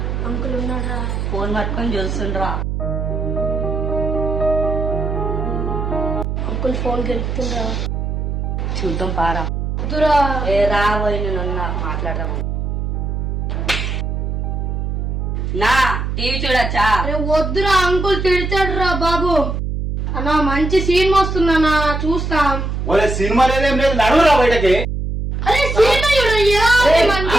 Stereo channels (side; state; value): right; noise; hum, 2 dB below the sound